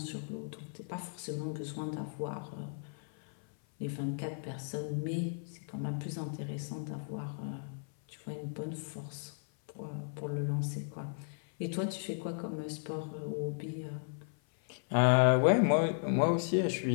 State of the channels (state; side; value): silent; right; 54 dB below the other